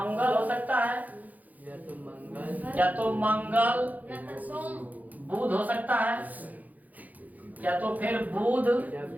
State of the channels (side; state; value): left; late; 0.080 ms